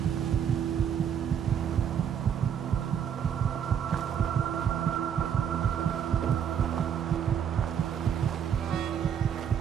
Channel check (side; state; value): left; quieter; 8.4 dB